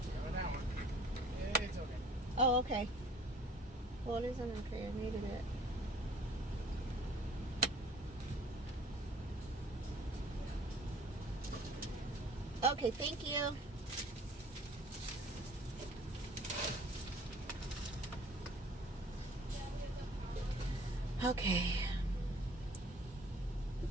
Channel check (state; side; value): normal; both; correlation 0.52